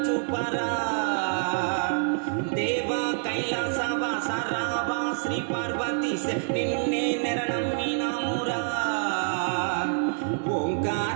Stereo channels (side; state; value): left; silent; digital silence